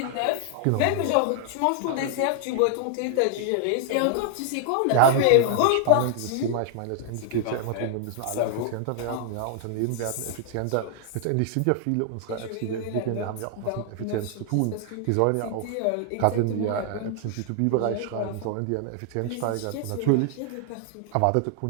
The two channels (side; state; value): both; different; correlation 0.00